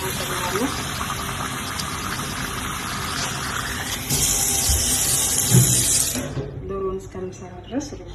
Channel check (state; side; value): identical; both; correlation 1.00